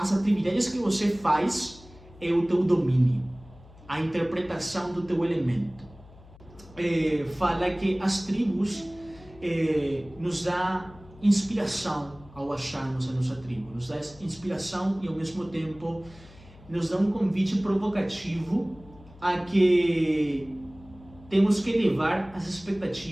atividades que você faz é o teu domínio, a interpretação do teu elemento. Fala que as tribos nos dá inspiração ao acharmos a nossa tribo, nos dá inspiração e ao mesmo tempo nos dá um convite provocativo a que temos que elevar as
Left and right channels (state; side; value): noise; left; hum, 22 dB below the sound